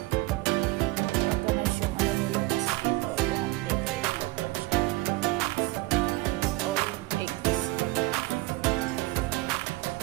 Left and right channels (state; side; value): quieter; left; 20.5 dB